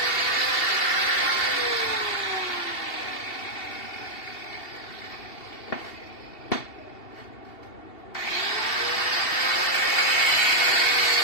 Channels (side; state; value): right; late; 2.7 ms